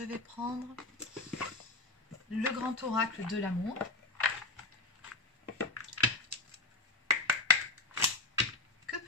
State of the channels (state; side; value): quieter; right; 3.3 dB